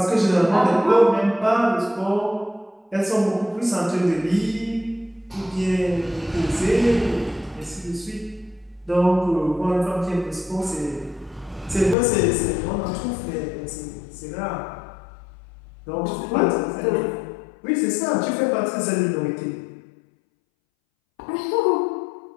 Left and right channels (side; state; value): right; drops out; at 12.0 s